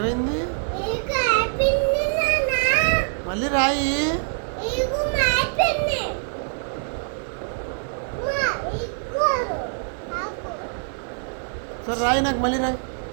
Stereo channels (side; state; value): left; silent; digital silence